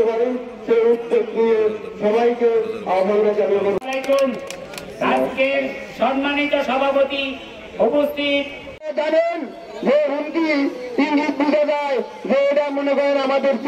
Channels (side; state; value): both; identical; correlation 1.00